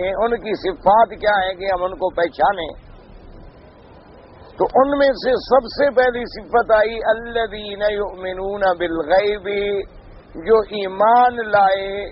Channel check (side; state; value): both; identical; correlation 1.00